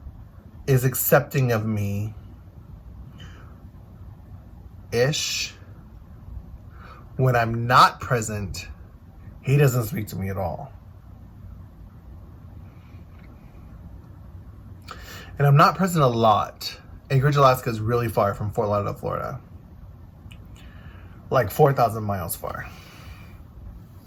is accepting of me ish. When I'm not present, he doesn't speak to me at all. And I'm not present a lot. Anchorage, Alaska is really far from Fort Lauderdale, Florida. Like 4,000 miles far.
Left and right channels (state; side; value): identical; both; correlation 1.00